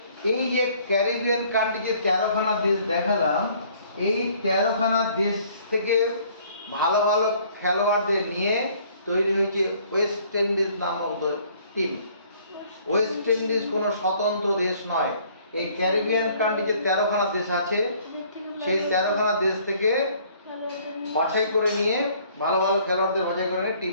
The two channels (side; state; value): both; inverted; correlation -0.59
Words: এই যে ক্যারিবিয়ান কান্ট্রি যে 13খানা দেশ দেখালাম, এই 13খানা দেশ থেকে ভালো ভালো খেলোয়াড়দের নিয়ে তৈরি হয়েছে ওয়েস্ট ইন্ডিজ নামক টিম। ওয়েস্ট ইন্ডিজ কোনো স্বতন্ত্র দেশ নয়, এই ক্যারিবিয়ান কান্ট্রি যে 13খানা দেশ আছে সেই 13খানা দেশ থেকে বাছাই করে নিয়ে ভালো ভালো খেলোয়াড়দের বাছাই করে নিয়ে